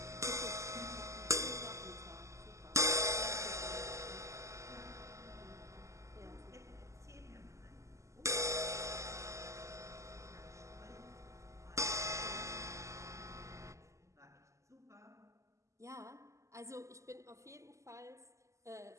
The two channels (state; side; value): late; left; 0.15 ms